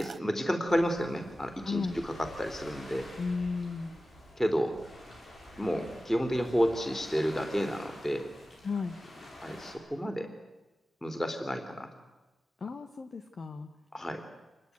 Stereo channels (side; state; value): both; normal; correlation 0.95